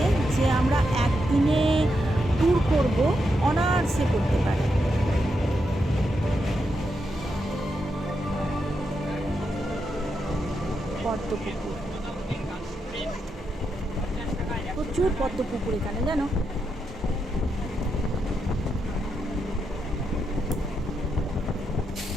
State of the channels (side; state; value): both; normal; correlation 0.83